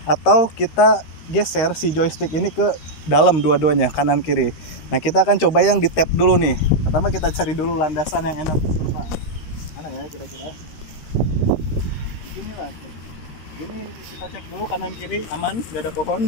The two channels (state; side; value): late; right; 13 ms